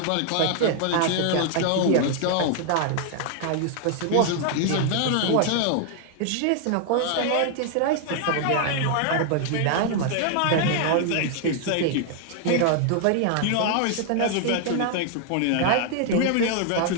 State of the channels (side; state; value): both; different; correlation 0.00